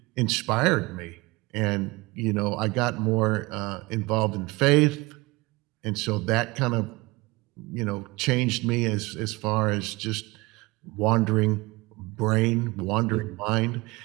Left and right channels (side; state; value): left; quieter; 23.1 dB